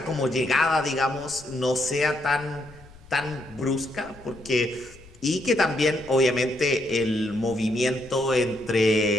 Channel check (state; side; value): noise; left; rumble, 23 dB below the sound